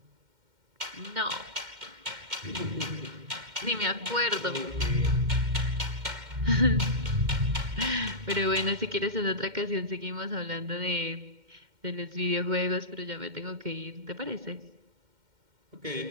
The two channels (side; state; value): left; late; 2.1 ms